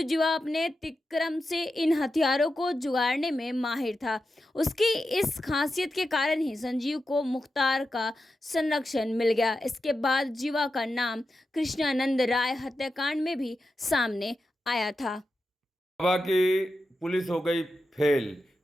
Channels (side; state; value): both; normal; correlation 0.90